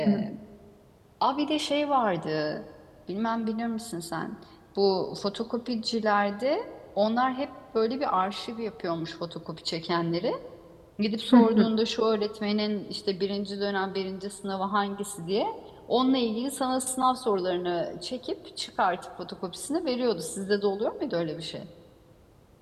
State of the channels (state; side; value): identical; both; correlation 1.00